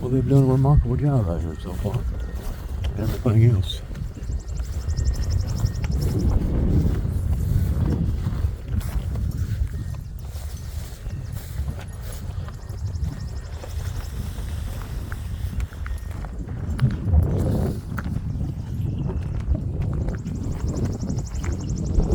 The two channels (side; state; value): both; identical; correlation 1.00